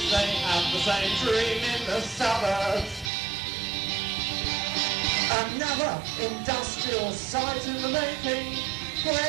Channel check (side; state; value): left; drops out; at 3.1 s